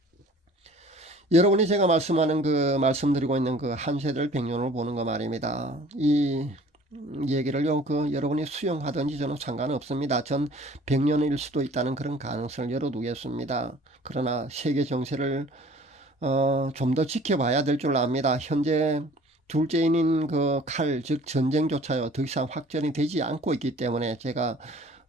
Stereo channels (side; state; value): both; normal; correlation 0.50